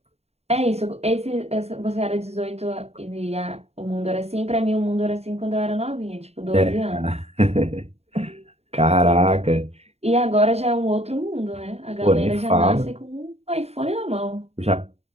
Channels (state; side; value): late; left; 0.30 ms